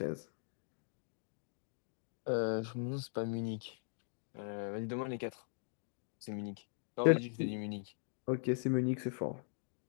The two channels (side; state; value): right; silent; digital silence